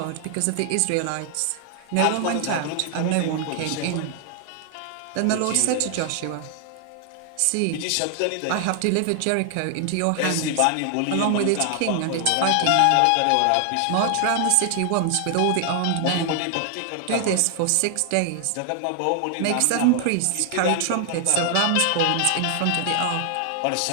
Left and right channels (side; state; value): both; different; correlation 0.00